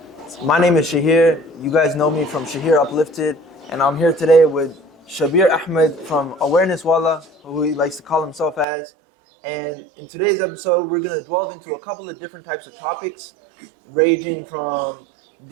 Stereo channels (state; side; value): drops out; left; at 8.7 s